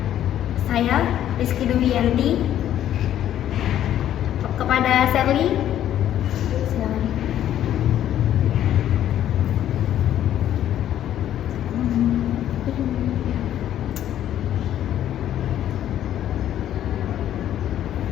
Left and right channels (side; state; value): right; quieter; 11.4 dB